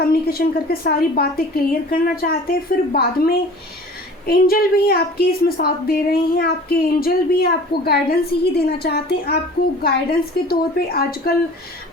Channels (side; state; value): both; normal; correlation 0.44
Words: करके सारी बातें क्लियर करना चाहते हैं। फिर बाद में एंजल भी आपके इसमें साथ दे रहे हैं, आपके एंजल भी आपको गाइडेंस ही देना चाहते हैं। आपको गाइडेंस के तौर पे आजकल